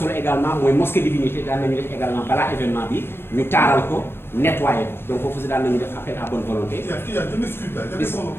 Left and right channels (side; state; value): right; late; 0.11 ms